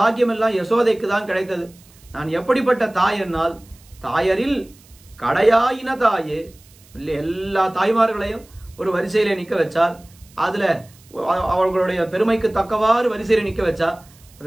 எல்லாம் யசோதைக்கு தான் கிடைத்தது. நான் எப்படிப்பட்ட தாய் என்னால் தாயரில் கடையாயின தாயே. எல்லா தாய்மார்களையும் ஒரு வரிசையில நிக்க வச்சால் அதுல அவர்களுடைய பெருமைக்கு தக்கவாறு வரிசையில நிக்க வச்சா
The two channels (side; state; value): right; noise; hiss, 27 dB below the sound